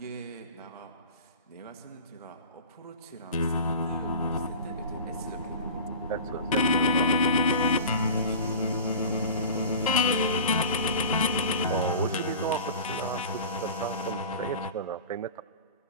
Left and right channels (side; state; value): both; inverted; correlation -0.36